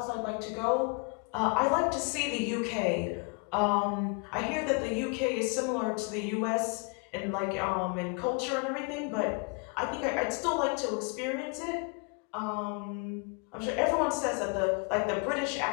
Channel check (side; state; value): right; quieter; 34.2 dB